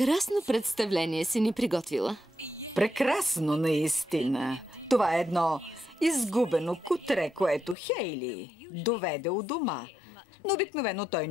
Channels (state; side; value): drops out; right; at 7.8 s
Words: представление си ни приготвила. Прекрасно, наистина. Това е едно изгубено кутре, което Хейли доведе у дома. Но обикновено той